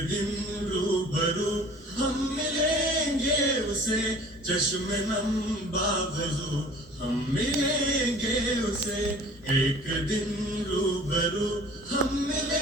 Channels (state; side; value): normal; both; correlation 0.47